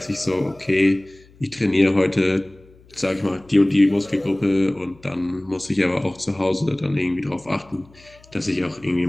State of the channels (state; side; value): noise; left; hum, 27 dB below the sound